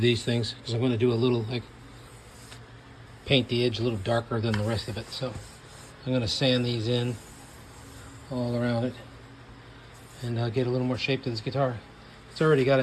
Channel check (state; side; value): identical; both; correlation 1.00